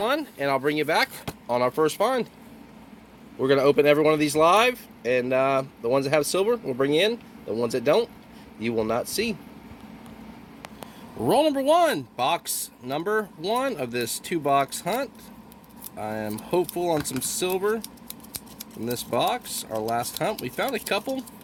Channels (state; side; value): identical; both; correlation 1.00